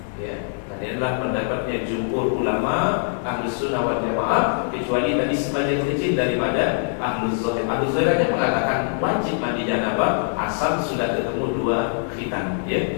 Ya, ini adalah pendapatnya jumhur ulama Ahlus Sunnah wal Jamaah, kecuali tadi sebagian kecil daripada Ahlus Zahir. Ahlus Zahir hanya mengatakan wajib mandi janabah asal sudah ketemu 2 khitan, ya.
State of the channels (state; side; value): silent; right; 59 dB below the other